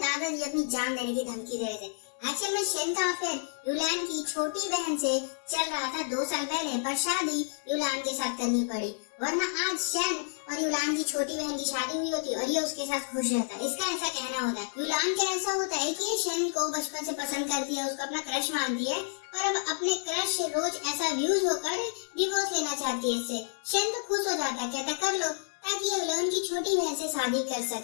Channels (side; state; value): right; silent; digital silence